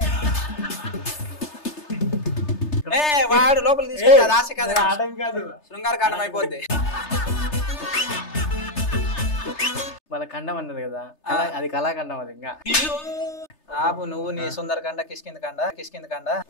వాడు లోపల తీసుకెళ్ళి ఆశ కాదు, శృంగార కాండం అయిపోద్ది. వాళ్ళ ఖండం అన్నది కదా, అది కళాఖండం. అది ఇంకా ఆపు నువ్వు, నీ సుందరకాండ కిష్కింద కాండ.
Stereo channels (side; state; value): right; late; 3.3 ms